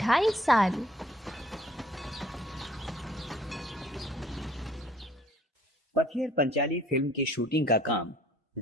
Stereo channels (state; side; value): normal; both; correlation 0.58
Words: साल। पथियर पंचाली फिल्म की शूटिंग का काम